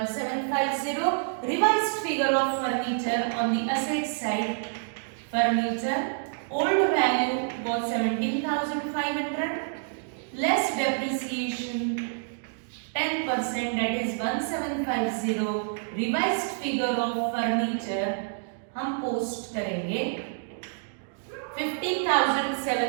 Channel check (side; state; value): left; silent; digital silence